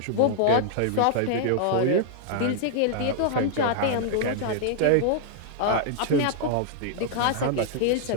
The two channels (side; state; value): both; different; correlation -0.01